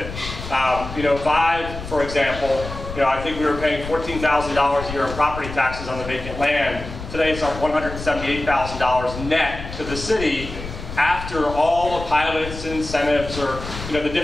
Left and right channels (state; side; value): noise; left; rumble, 10 dB below the sound